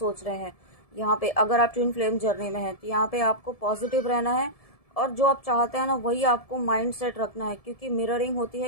रहे हैं। यहाँ पे अगर आप ट्विन फ्लेम जर्नी में हैं तो यहाँ पे आपको पॉजिटिव रहना है, और जो आप चाहते हैं ना वही आपको माइंड सेट रखना है, क्योंकि मिररिंग होती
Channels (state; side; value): late; right; 1.7 ms